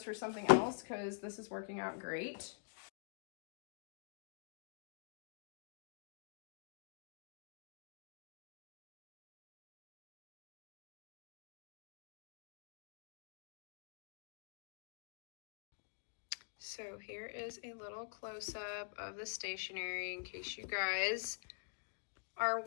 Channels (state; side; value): silent; right; digital silence